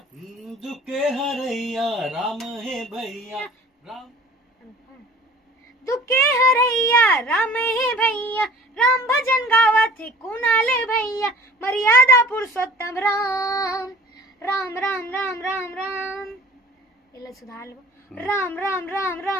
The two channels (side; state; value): both; normal; correlation 0.47